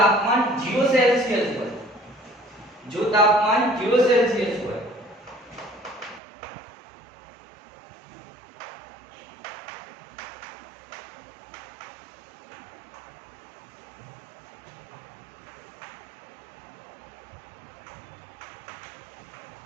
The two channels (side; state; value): left; drops out; at 6.2 s